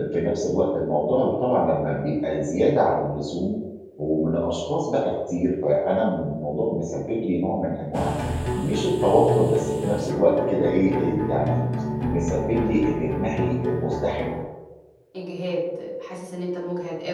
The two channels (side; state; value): both; identical; correlation 1.00